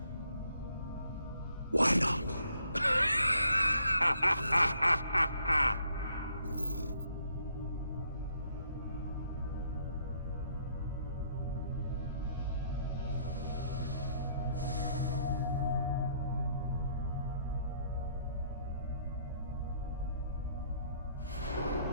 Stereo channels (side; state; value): both; inverted; correlation -0.68